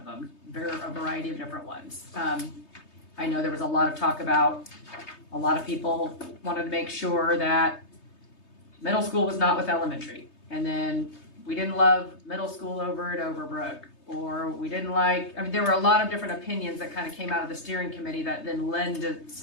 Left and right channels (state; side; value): late; right; 3.2 ms